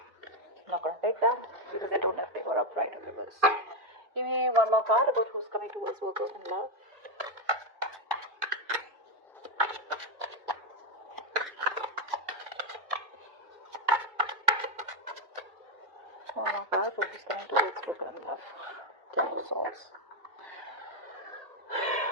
I'm not gonna take them because I don't have paper upright in reverse. Give me one more card about who's coming towards Virgo and love. Oh my god, who's coming towards Virgo and love? Ten of Swords.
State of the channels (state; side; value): late; left; 2.4 ms